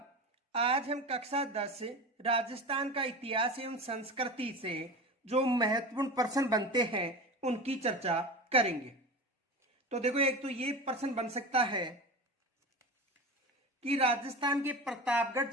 आज हम कक्षा 10 राजस्थान का इतिहास एवं संस्कृति से जो महत्वपूर्ण प्रश्न बनते हैं उनकी चर्चा करेंगे। तो देखो, एक तो ये प्रश्न बन सकता है कि राजस्थान के प्रतापगढ़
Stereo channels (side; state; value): both; normal; correlation 0.28